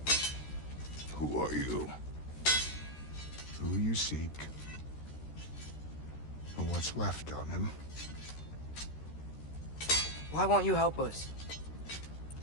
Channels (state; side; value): late; right; 13 ms